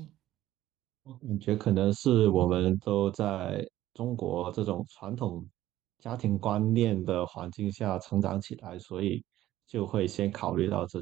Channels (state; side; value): quieter; left; 14.1 dB